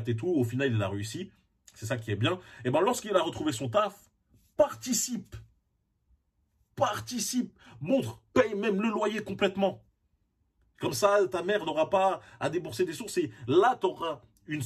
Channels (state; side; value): identical; both; correlation 1.00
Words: et tout. Au final, il a réussi. C'est ça qui est bien. Et ben, lorsqu'il a retrouvé son taf, participe, montre, paye même le loyer complètement. Comme ça, ta mère n'aura pas à débourser des sources et là, tu auras une